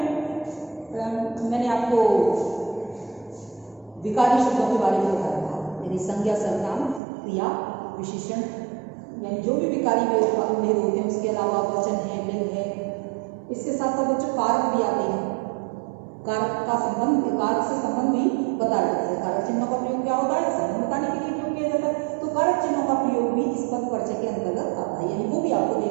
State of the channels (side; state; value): left; drops out; at 7.0 s